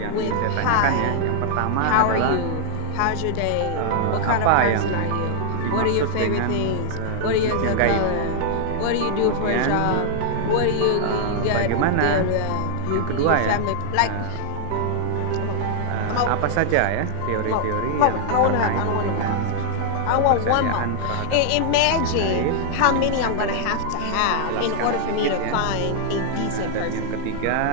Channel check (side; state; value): both; different; correlation 0.00